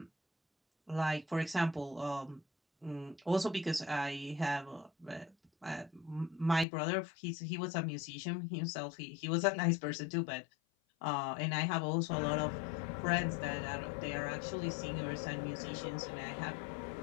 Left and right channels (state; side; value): drops out; right; at 6.7 s